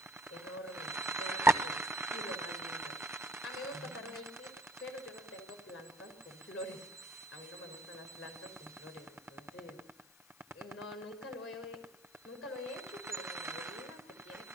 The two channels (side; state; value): left; noise; hiss, 24 dB below the sound